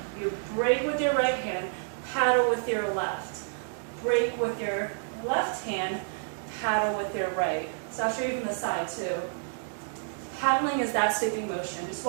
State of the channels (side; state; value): left; silent; digital silence